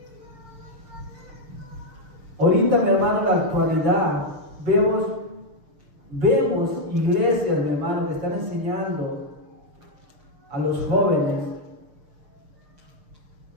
Ahorita, mi hermano, en la actualidad, vemos iglesias, mi hermano, que están enseñando a los jóvenes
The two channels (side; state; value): left; late; 6.6 ms